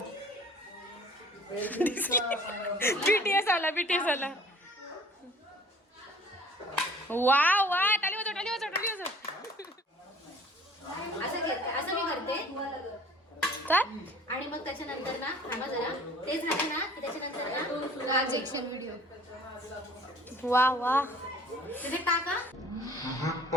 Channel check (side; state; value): both; normal; correlation 0.51